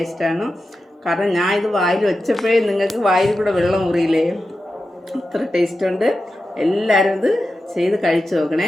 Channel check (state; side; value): normal; both; correlation 0.91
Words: കാരണം ഞാൻ ഇത് വായിൽ വെച്ചപ്പോഴേ നിങ്ങൾക്ക് വായിൽ കൂടെ വെള്ളം മുറിയില്ലേ, അത്ര ടേസ്റ്റ് ഉണ്ട്. എല്ലാവരും ഇത് ചെയ്ത് കഴിച്ചു